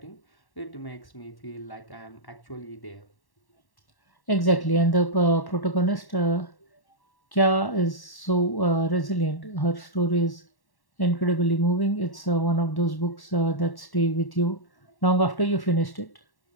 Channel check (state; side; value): late; right; 1.1 ms